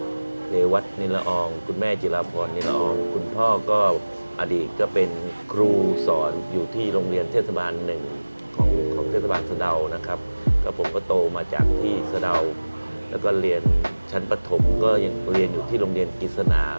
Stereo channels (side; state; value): both; inverted; correlation -1.00